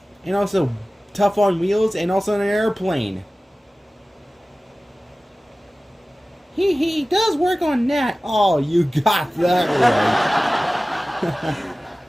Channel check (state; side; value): normal; both; correlation 0.97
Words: tough on wheels, and also an airplane. He does work on that. Oh, you got that right.